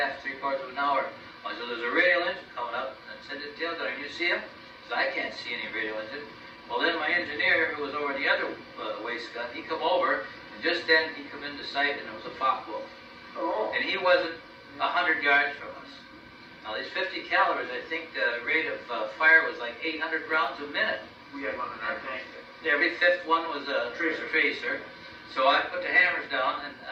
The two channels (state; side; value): identical; both; correlation 1.00